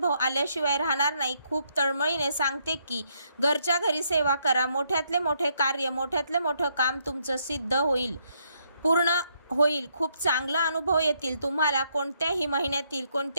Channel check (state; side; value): inverted; both; correlation -0.73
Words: आल्याशिवाय राहणार नाही. खूप तळमळीने सांगते की घरच्या घरी सेवा करा. मोठ्यातले मोठे कार्य, मोठ्यातले मोठं काम तुमचं सिद्ध होईल, पूर्ण होईल. खूप चांगला अनुभव येतील. तुम्हाला कोणत्याही महिन्यातील